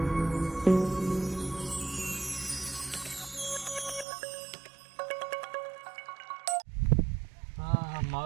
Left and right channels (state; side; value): drops out; left; at 4.0 s